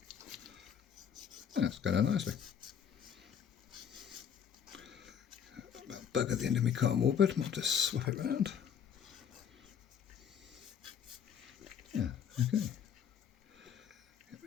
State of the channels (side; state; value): right; quieter; 8.2 dB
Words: That's going on nicely. Bug at the end of my cotton wool bed. Might just swap it round. Yeah, okay. Get a